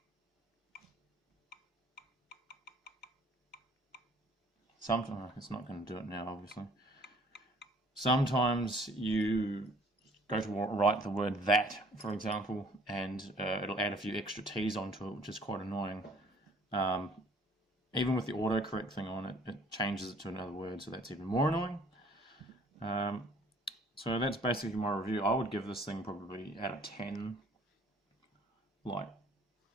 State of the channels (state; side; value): normal; both; correlation 0.57